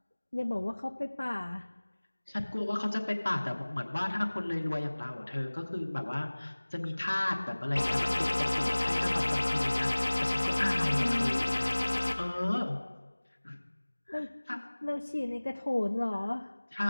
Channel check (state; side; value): inverted; both; correlation -1.00